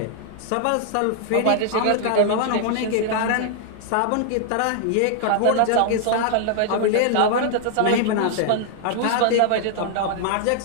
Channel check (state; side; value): different; both; correlation 0.00